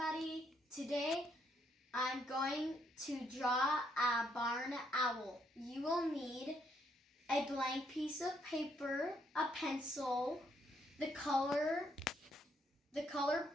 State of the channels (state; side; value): normal; both; correlation 0.73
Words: today I'm going to draw a barn owl. You will need a blank piece of paper, a pencil, the color